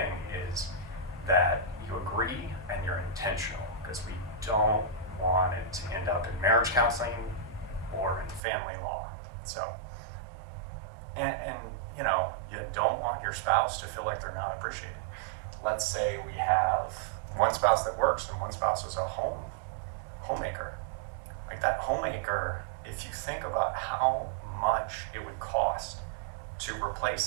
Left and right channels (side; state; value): left; drops out; at 8.4 s